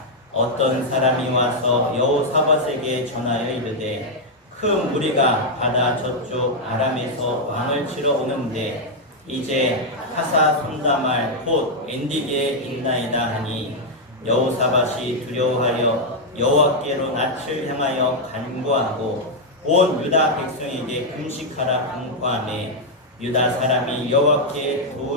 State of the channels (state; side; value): normal; both; correlation -0.01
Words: 어떤 사람이 와서 여호사밧에게 전하여 이르되 큰 무리가 바다 저쪽 아람에서 왕을 치러 오는데 이제 하사 손다말 곧 엔디게에 있나이다 하니 여호사밧이 두려워하여 여호와께로 낯을 향하여 간구하고 온 유다 백성에게 금식하라 간구하며 유다 사람이 여호와께